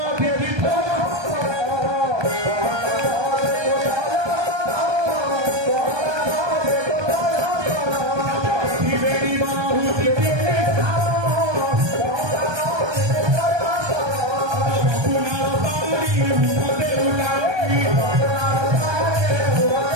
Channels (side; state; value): left; late; 1.2 ms